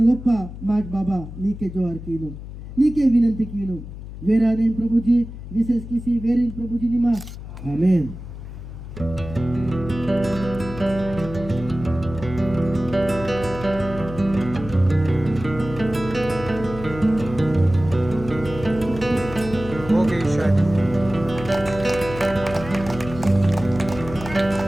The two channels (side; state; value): left; noise; hum, 11 dB below the sound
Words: माट बाबा नीके जोहार कीनो नीके विनंती कीनो वेराने प्रभु जी विशेष किसी वेरिन प्रभु जी निमा आमीन। हो गई शादी।